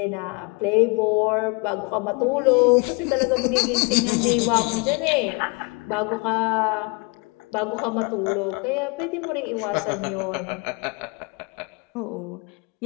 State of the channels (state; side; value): quieter; right; 30.8 dB